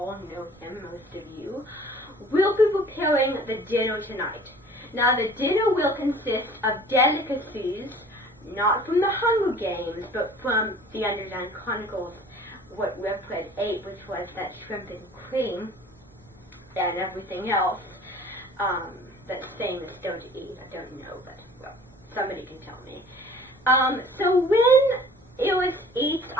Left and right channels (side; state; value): both; normal; correlation 0.48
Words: know him, most of you, will be preparing the dinner tonight. Now, the dinner will consist of delicacies, not from the Hunger Games, but from the Underland Chronicles, what Red ate, which was that shrimp and cream and everything else that's famous still to eat. I don't know, but well, somebody can tell me. So when Eris eats,